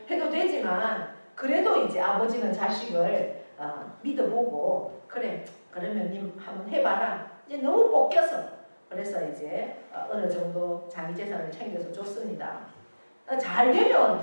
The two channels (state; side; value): inverted; both; correlation -1.00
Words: 해도 되지만 그래도 이제 아버지는 자식을 믿어보고 그래 그러면 님 한번 해봐라. 이제 너무 볶여서 그래서 이제 어느 정도 자기 재산을 챙겨서 줬습니다. 잘